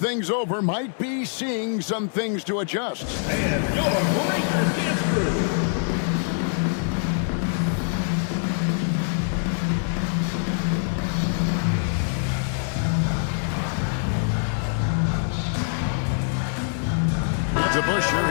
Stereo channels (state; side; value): silent; right; digital silence